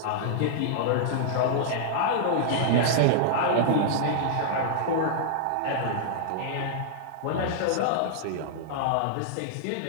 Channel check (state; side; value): different; both; correlation -0.01